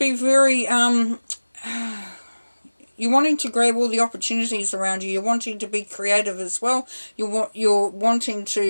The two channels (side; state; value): both; inverted; correlation -1.00